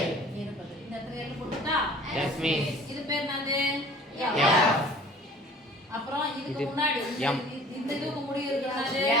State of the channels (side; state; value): both; normal; correlation 0.49